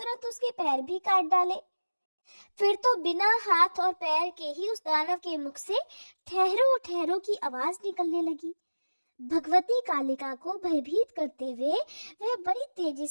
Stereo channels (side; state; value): both; inverted; correlation -1.00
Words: उसके पैर भी काट डाले। फिर तो बिना हाथ और पैर के ही उस दानव के मुख से ठहरो ठहरो की आवाज निकलने लगी। भगवती कालिका को भयभीत करते हुए वह बड़ी तेजी